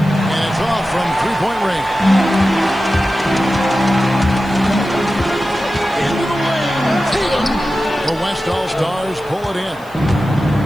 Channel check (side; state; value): left; noise; hiss, 26 dB below the sound